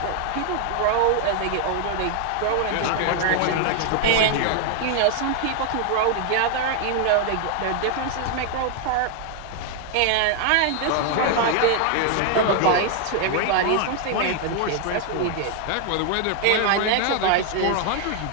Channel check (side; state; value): both; different; correlation 0.00